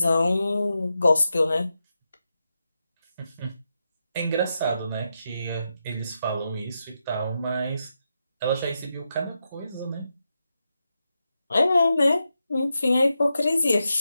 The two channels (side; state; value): both; inverted; correlation -0.87